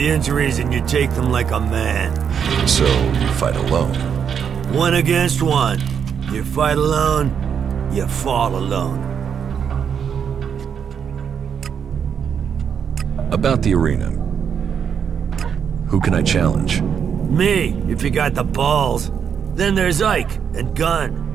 injuries and you take them like a man. So, you fight alone? 1 against 1. You fight alone, you fall alone. About the arena. Who can I challenge? Me, if you got the balls. Then there's Ike and Gunn.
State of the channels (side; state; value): left; quieter; 7.5 dB